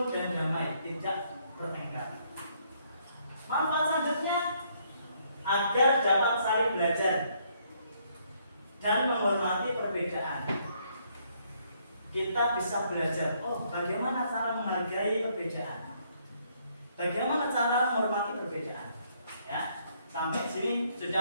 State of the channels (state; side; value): inverted; both; correlation -0.69